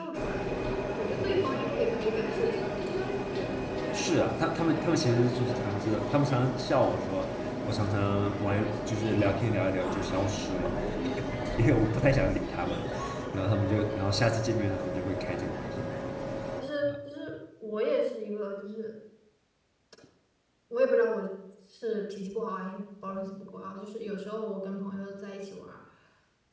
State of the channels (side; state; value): both; identical; correlation 1.00